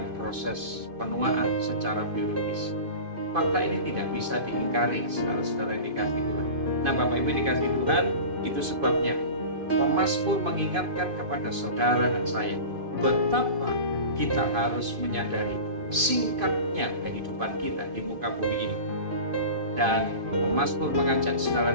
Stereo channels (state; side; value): late; left; 2.5 ms